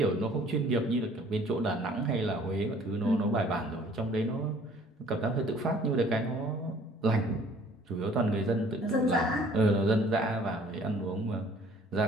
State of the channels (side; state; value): both; normal; correlation 0.55